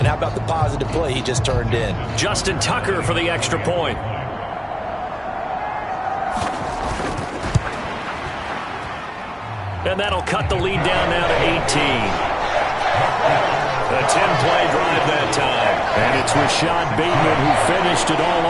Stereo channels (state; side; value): identical; both; correlation 1.00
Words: how about the positive play he just turned in? Justin Tucker for the extra point. And that'll cut the lead down now to 18. A 10-play drive that time. And it's Rashad Bateman who finished it all